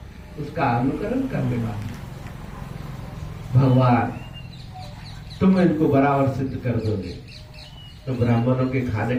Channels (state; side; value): identical; both; correlation 1.00